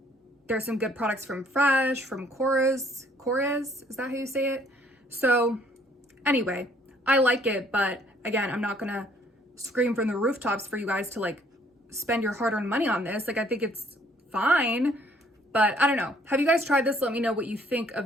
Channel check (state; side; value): normal; both; correlation 0.62